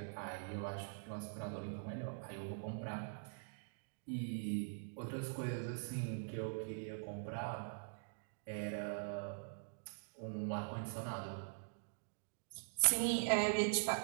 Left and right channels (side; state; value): left; silent; digital silence